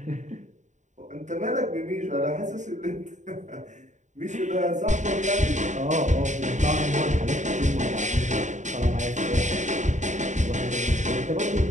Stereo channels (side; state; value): left; late; 0.35 ms